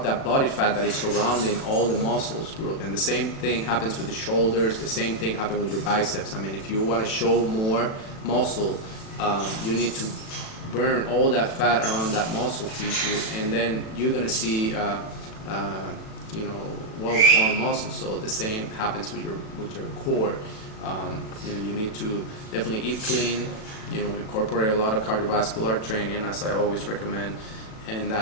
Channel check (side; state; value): right; late; 37 ms